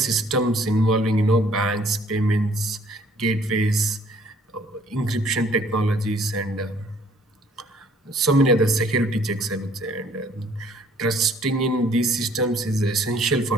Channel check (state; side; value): normal; both; correlation 0.59